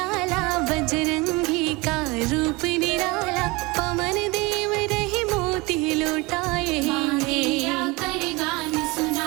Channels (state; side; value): quieter; left; 24.6 dB